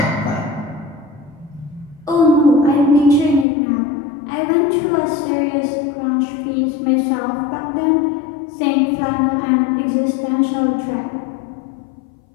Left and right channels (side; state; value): right; drops out; at 3.5 s